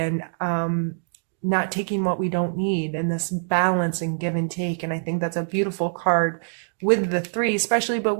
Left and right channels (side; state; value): left; silent; digital silence